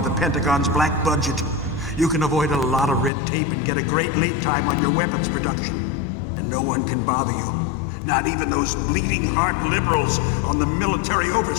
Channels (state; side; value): drops out; right; at 3.1 s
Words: Pentagon's black budget. You can avoid a lot of red tape and get a great lead time on your weapons production. And no one can bother you. Not even those bleeding heart liberals on the Military